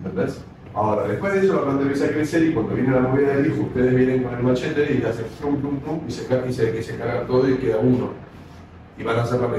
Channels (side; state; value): both; identical; correlation 1.00